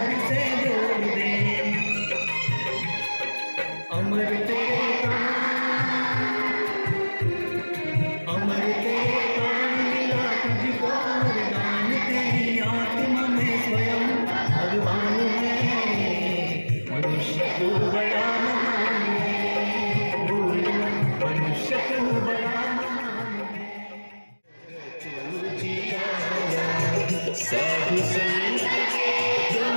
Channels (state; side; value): inverted; both; correlation -1.00